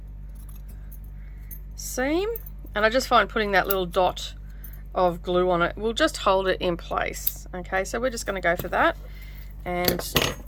seam, and I just find putting that little dot of glue on it will just hold it in place. Okay, so we're just going to go for that, and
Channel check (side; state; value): both; identical; correlation 1.00